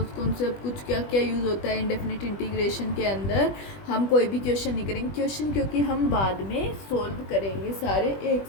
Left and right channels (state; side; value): late; right; 20 ms